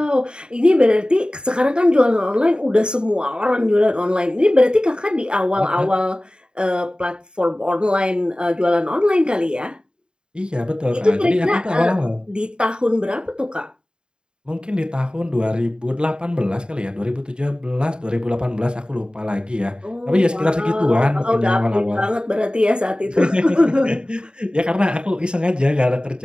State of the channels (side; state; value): left; late; 0.050 ms